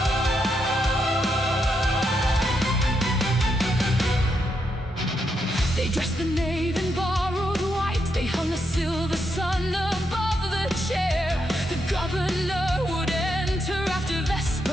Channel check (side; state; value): both; normal; correlation 0.81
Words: They dressed the nave in borrowed white. They hung a silver sun above the chair. The governor would enter after